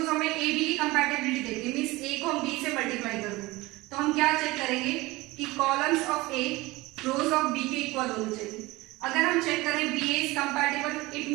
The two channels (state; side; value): quieter; left; 20.9 dB